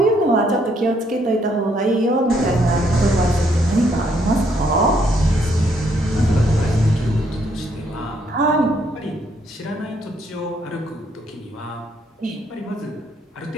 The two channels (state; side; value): normal; both; correlation 0.71